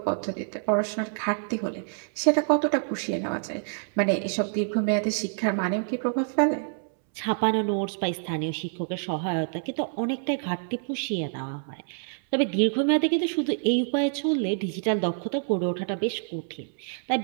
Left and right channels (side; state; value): left; silent; 60 dB below the other